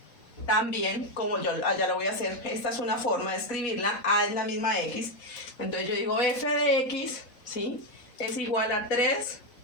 también, como yo allá lo voy a hacer. Esta es una forma de escribirla. A es la misma X. Entonces yo digo f de X, ¿sí? Es igual a 3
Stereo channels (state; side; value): late; right; 4.1 ms